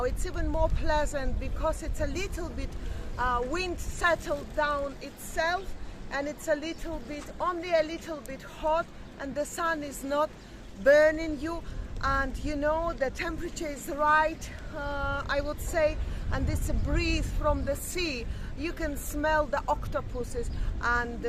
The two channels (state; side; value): identical; both; correlation 1.00